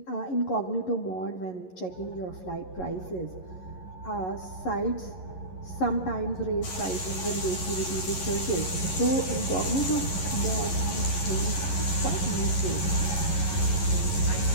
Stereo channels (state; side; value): late; right; 11 ms